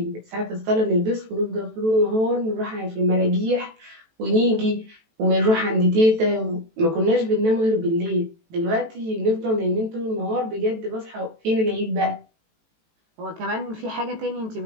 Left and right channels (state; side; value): late; left; 18 ms